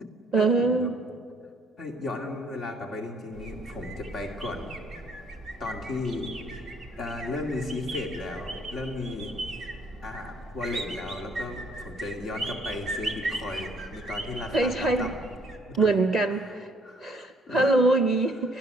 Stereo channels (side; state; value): both; normal; correlation 0.63